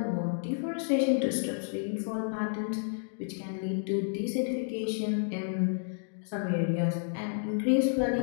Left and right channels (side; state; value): right; silent; digital silence